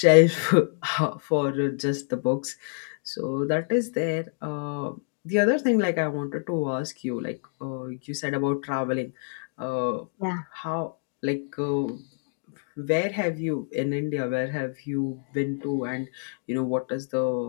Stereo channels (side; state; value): right; silent; 60 dB below the other